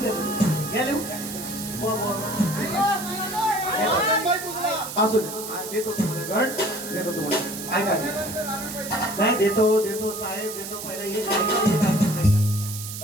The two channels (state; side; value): noise; right; hiss, 9 dB below the sound